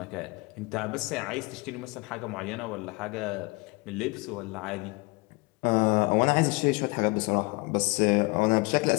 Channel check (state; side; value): quieter; right; 26.6 dB